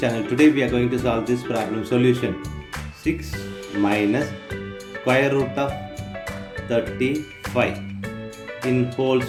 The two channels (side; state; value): both; identical; correlation 1.00